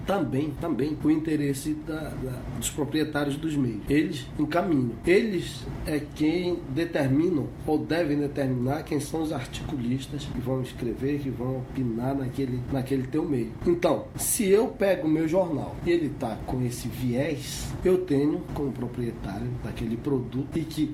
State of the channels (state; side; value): identical; both; correlation 1.00